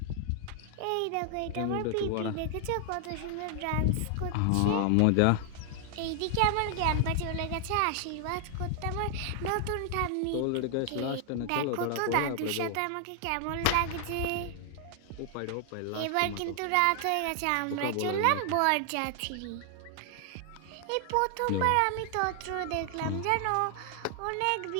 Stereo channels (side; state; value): both; different; correlation 0.00